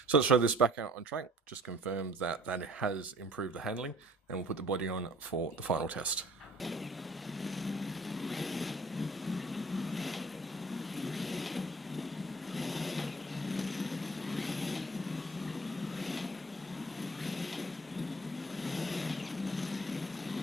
So let's throw this back out on track, just confirm that it has improved the handling, and we'll put the body on for the final test.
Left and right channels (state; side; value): normal; both; correlation 0.53